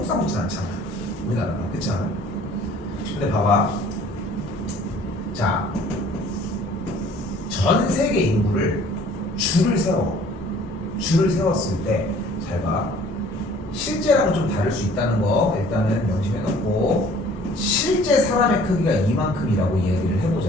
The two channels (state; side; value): normal; both; correlation 0.53